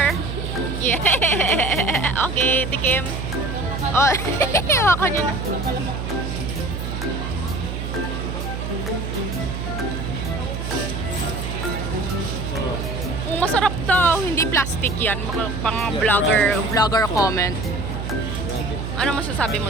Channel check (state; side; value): noise; right; hum, 5 dB below the sound